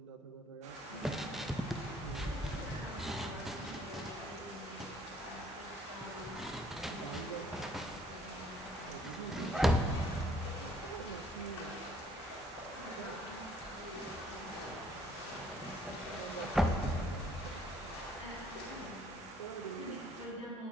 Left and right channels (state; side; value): normal; both; correlation 0.61